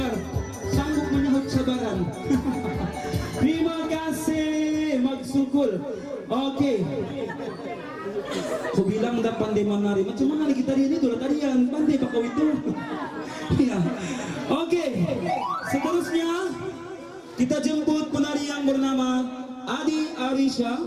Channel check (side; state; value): both; identical; correlation 1.00